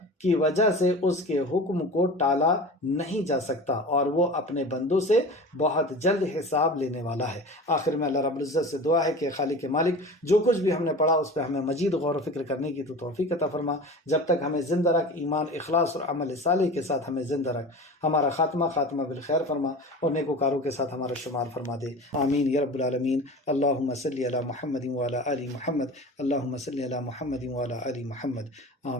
کی وجہ سے اس کے حکم کو ٹالا نہیں جا سکتا، اور وہ اپنے بندوں سے بہت جلد حساب لینے والا ہے۔ آخر میں اللہ رب العزت سے دعا ہے کہ خالق مالک جو کچھ بھی ہم نے پڑھا اس پہ ہمیں مزید غور و فکر کرنے کی تو توفیق عطا فرما، جب تک ہمیں زندہ رکھ، ایمان، اخلاص اور عمل صالح کے ساتھ ہمیں زندہ رکھ، ہمارا خاتمہ بالخیر فرما، اور نیکوکاروں کے ساتھ ہمارا شمار فرما دے، آمین یا رب العالمین۔ اللہم صلی علی محمد وعلی آل محمد، اللہم صلی علی محمد وعلی آل محمد،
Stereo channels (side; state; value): both; normal; correlation 0.35